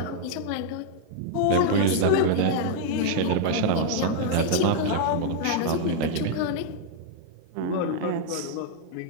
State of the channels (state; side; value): different; both; correlation -0.01